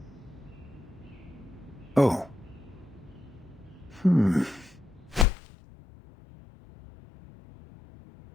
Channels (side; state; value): right; drops out; at 5.2 s